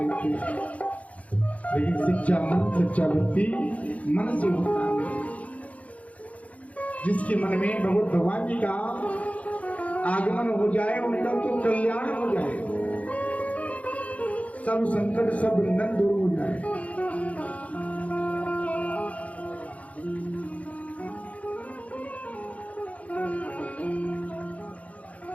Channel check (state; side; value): late; right; 0.067 ms